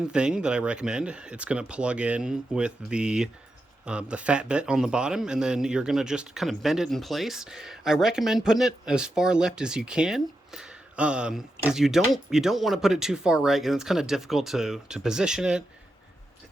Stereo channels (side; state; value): both; normal; correlation 0.87